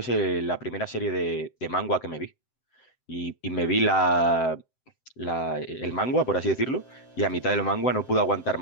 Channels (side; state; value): right; late; 7.7 ms